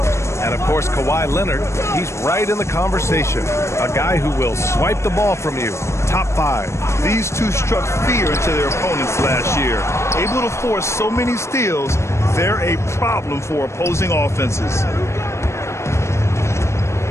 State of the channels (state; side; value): late; right; 0.13 ms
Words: And, of course, Kawhi Leonard, he's right in the conversation. A guy who will swipe the ball from you. Top 5. These two struck fear into their opponents last year. Able to force so many steals, they're a problem for opposing offenses.